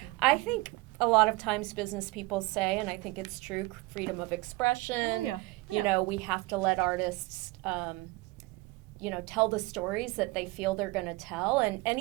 I think a lot of times business people say, and I think it's true, freedom of expression. We have to let artists, tell the stories that they feel they're going to tell. And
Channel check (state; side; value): quieter; left; 21.7 dB